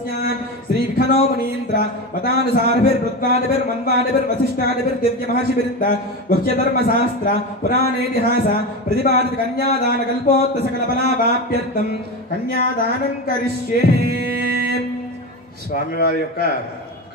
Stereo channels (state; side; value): normal; both; correlation 0.22